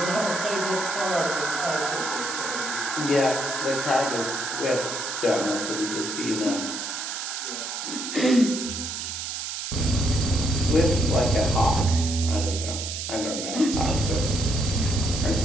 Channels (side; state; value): right; noise; hiss, 5 dB below the sound